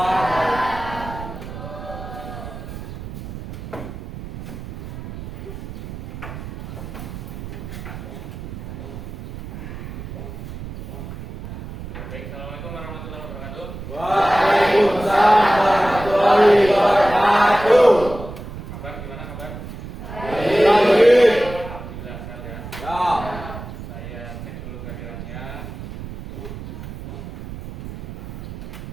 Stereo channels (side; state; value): right; noise; rumble, 10 dB below the sound